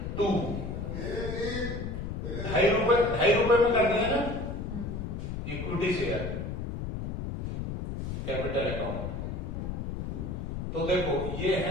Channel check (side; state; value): left; noise; rumble, 5 dB below the sound